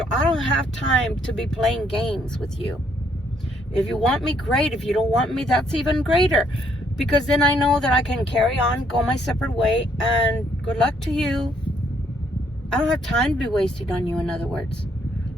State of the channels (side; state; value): both; normal; correlation 0.69